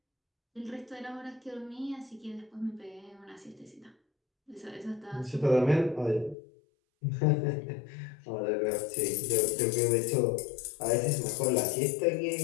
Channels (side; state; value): right; drops out; at 6.4 s